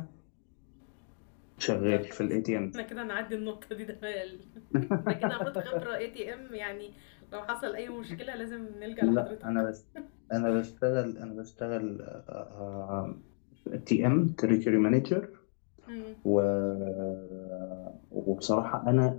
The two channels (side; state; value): right; silent; 56 dB below the other